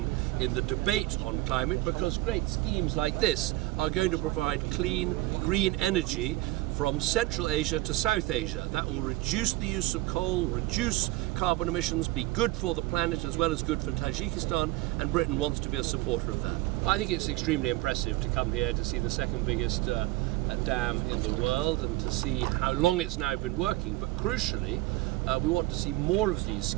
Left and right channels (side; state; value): left; quieter; 18.9 dB